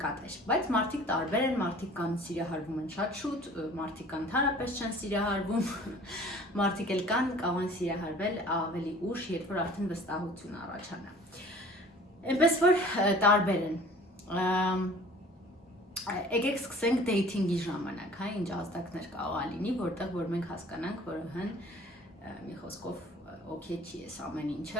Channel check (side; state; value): both; normal; correlation 0.48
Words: Բայց մարդիկ տարբեր են, մարդիկ կան սիրահարվում են շատ շուտ, մարդիկ կան ընդհանրապես չեն սիրահարվում, մարդիկ էլ կան կարող են սիրահարվել ավելի ուշ, երբ որ արդեն վստահություն առաջանա։ Այնպես որ տարբեր են։ Եկեք սկսենք dating-ի ժամանակ, հա, ինչ ազդակներ կարող է լինի, որտեղ որ մենք հասկանանք, որ մի խոսքով օքեյ չի էս ամեն